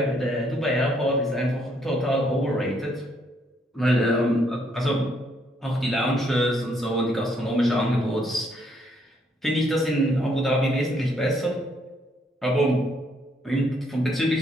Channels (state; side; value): normal; both; correlation 0.70